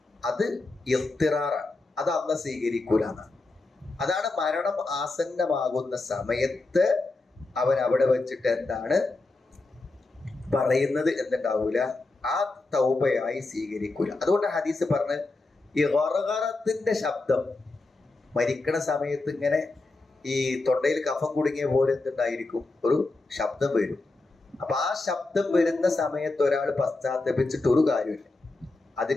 അത് ഇഖ്തിറാറാണ്. അത് അള്ളാഹ് സ്വീകരിക്കൂല എന്നാണ്. അതാണ് മരണം ആസന്നമാകുന്ന സമയത്ത് അവൻ അവിടെ വെച്ചിട്ട് എന്താണ് പറയുന്നത് എന്നുണ്ടാവൂല, ആ തൗബയായി സ്വീകരിക്കൂല. അതുകൊണ്ട് ഹദീസ് പറഞ്ഞ് ഈ ഗർഗറത്തിന്റെ ശബ്ദം മരിക്കണ സമയത്ത് ഇങ്ങനെ ഈ തൊണ്ടയിൽ കഫം കുടുങ്ങിയ പോലെ എന്തുണ്ടായിരിക്കും? ഒരു ശബ്ദം വരും. അപ്പൊ ആ ശബ്ദം വരുന്ന സമയത്ത് ഒരാൾ പശ്ചാത്തപിച്ചിട്ട് ഒരു കാര്യമില്ല.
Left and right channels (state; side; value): quieter; right; 3.3 dB